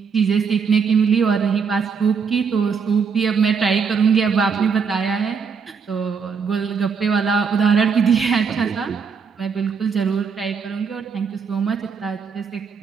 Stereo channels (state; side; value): quieter; left; 5.9 dB